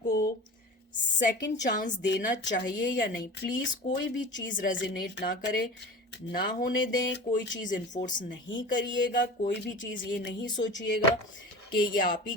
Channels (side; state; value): both; normal; correlation 0.35